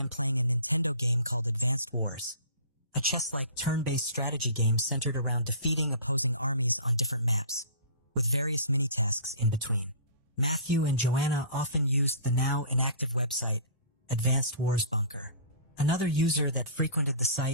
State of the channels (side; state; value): both; inverted; correlation -0.41